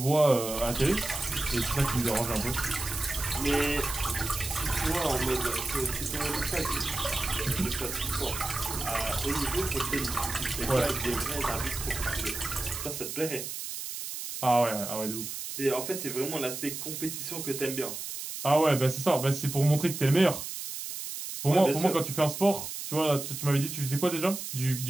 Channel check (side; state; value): right; noise; hiss, 7 dB below the sound